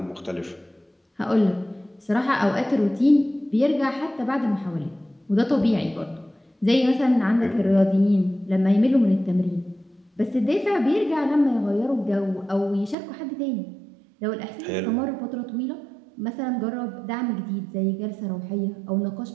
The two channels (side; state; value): left; drops out; at 13.0 s